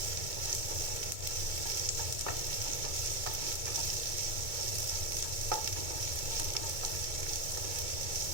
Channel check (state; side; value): late; left; 2.2 ms